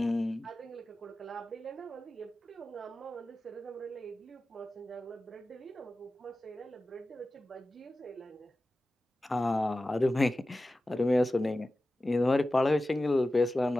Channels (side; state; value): both; normal; correlation 0.95